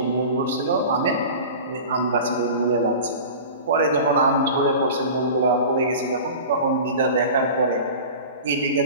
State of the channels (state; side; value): inverted; both; correlation -0.36